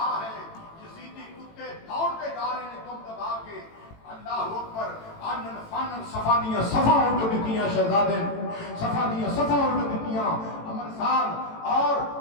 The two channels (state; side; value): late; right; 18 ms